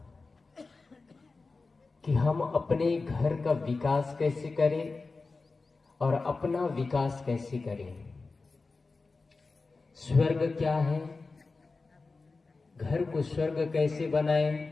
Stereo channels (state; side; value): quieter; right; 3.9 dB